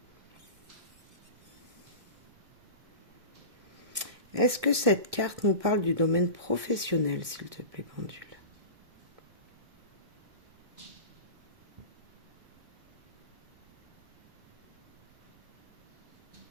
Est-ce que cette carte nous parle du domaine professionnel, s'il te plaît, pendule?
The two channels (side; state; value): left; late; 1.6 ms